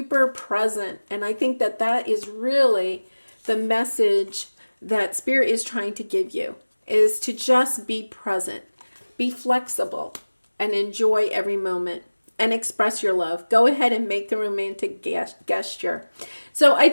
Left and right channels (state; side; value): inverted; both; correlation -1.00